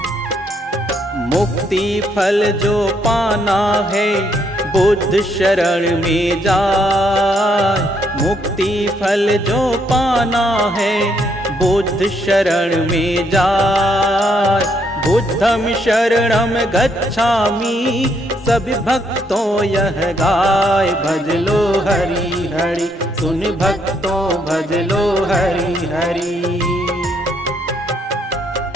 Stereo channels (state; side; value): normal; both; correlation 0.73